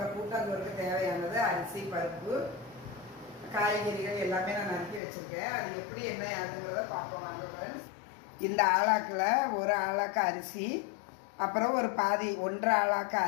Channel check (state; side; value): drops out; right; at 5.0 s